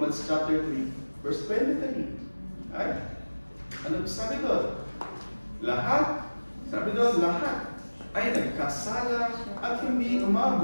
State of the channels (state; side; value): inverted; both; correlation -1.00